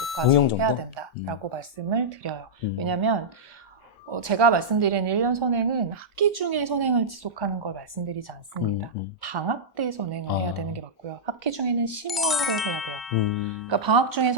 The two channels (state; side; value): normal; both; correlation -0.09